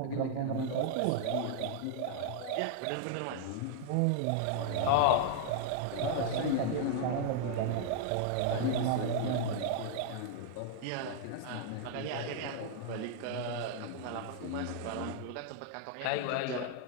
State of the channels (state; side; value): different; both; correlation -0.01